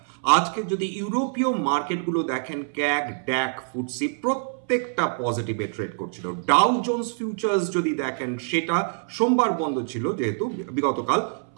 আজকে যদি ইউরোপীয় মার্কেটগুলো দেখেন, ক্যাগ, ড্যাক, ফুটসি প্রত্যেকটা পজিটিভে ট্রেড করছিল। ডাউ জোন্স ফিউচার্স যদি দেখেন, সেটা সোমবার বন্ধ ছিল যেহেতু বিগতকাল,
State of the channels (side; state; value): left; silent; 61 dB below the other